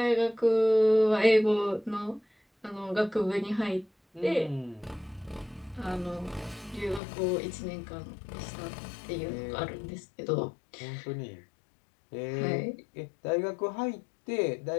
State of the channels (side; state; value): right; drops out; at 7.0 s